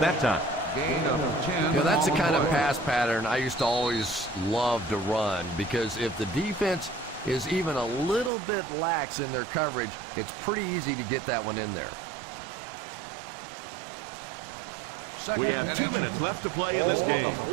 that time. Gain of 10. You know, that's the kind of pass pattern I used to always love to run, because if the defense is even a little bit lax in their coverage, it's pretty easy to get that one in there. We have 2 minutes left to play in this game.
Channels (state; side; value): drops out; left; at 8.3 s